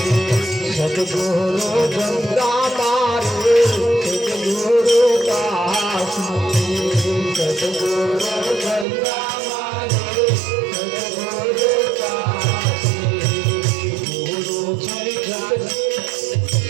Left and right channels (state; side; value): drops out; left; at 8.8 s